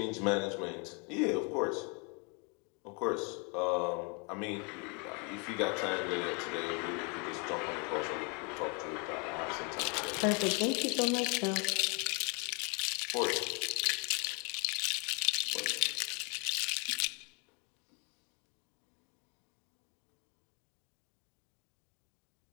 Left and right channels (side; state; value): right; quieter; 33.8 dB